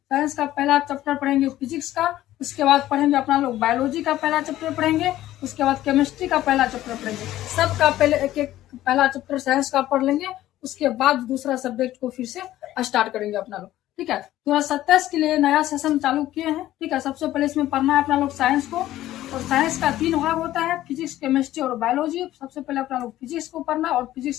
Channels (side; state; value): right; quieter; 14.2 dB